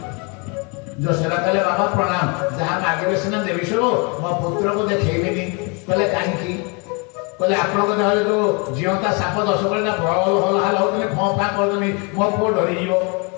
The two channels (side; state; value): right; quieter; 31.8 dB